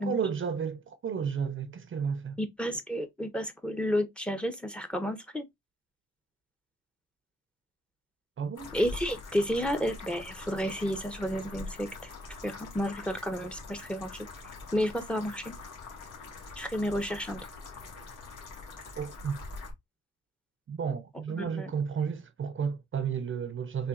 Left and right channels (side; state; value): both; normal; correlation 0.71